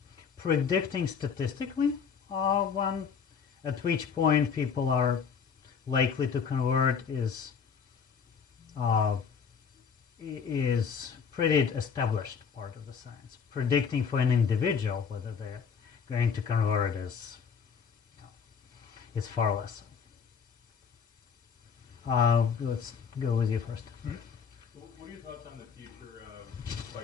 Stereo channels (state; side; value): quieter; right; 6.5 dB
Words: predicting statistically at which point people are likely to convert is pretty established part of the science. Predicting for an individual whether they're going to convert is far less. Let's go with you first. What are your thoughts on the future of